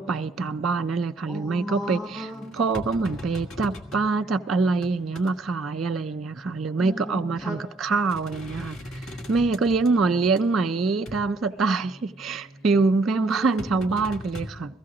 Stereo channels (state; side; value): quieter; left; 3.4 dB